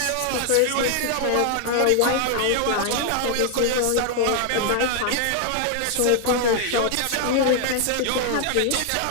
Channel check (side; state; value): both; different; correlation 0.00